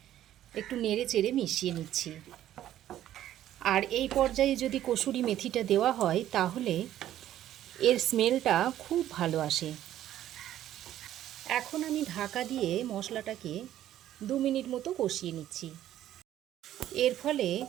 একটু নেড়ে চেড়ে মিশিয়ে নিচ্ছি। আর এই পর্যায়ে যদি কসুরি মেথিটা দেওয়া হয় তাহলে এর স্মেলটা খুব ভালো আসে। এখন আমি ঢাকা দিয়ে মশলাটাকে 2 মিনিট মতো কষিয়ে নিচ্ছি। এর ফলে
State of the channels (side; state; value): left; quieter; 12.3 dB